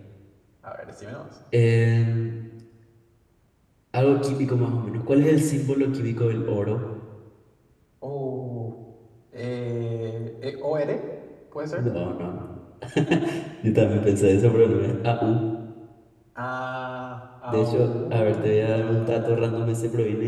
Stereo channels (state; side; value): identical; both; correlation 1.00